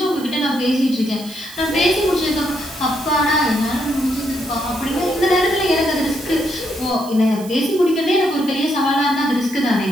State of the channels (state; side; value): noise; right; hiss, 17 dB below the sound